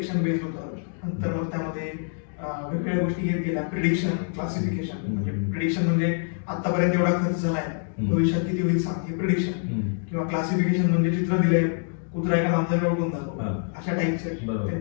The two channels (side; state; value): right; silent; 61 dB below the other